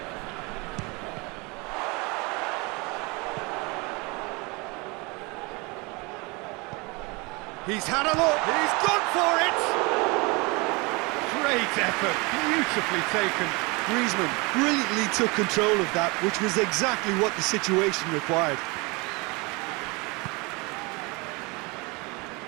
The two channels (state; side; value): quieter; left; 27.2 dB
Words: He's had a look, he's gone for it! Great effort, beautifully taken. Griezmann brilliantly took control of that, which was exactly what the situation required.